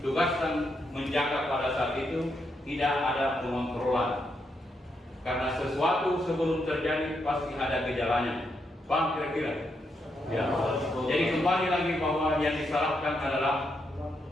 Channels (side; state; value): both; normal; correlation 0.80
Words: menjaga pada saat itu tidak ada pengontrolan. Karena sesuatu sebelum terjadi pasti ada gejalanya. Paham kira-kira? Ya. Jadi kembali lagi bahwa yang disalahkan adalah